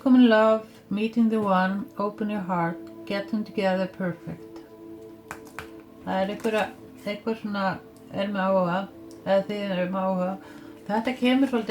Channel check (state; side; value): identical; both; correlation 1.00